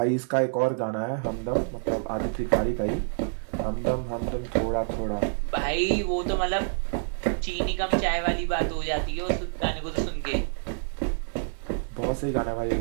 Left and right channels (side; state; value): left; silent; 60 dB below the other